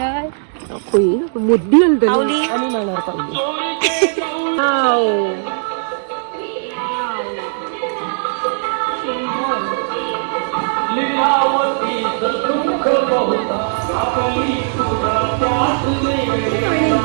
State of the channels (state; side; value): silent; left; digital silence